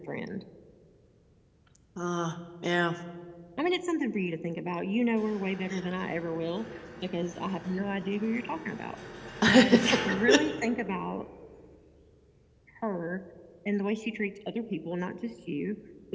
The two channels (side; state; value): both; identical; correlation 1.00